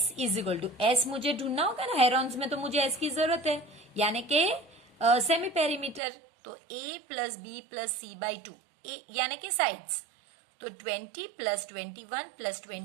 is equal to, S मुझे ढूंढना होगा ना, हेरॉन्स में तो मुझे S की जरूरत है, यानी कि सेमी पेरीमीटर। तो A plus B plus C by 2, यानी कि साइड्स। तो 20 प्लस 21 प्लस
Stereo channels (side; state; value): left; drops out; at 6.0 s